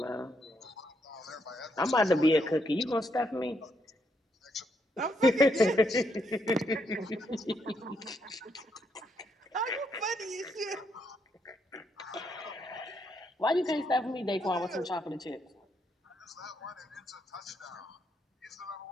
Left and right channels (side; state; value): both; normal; correlation 0.76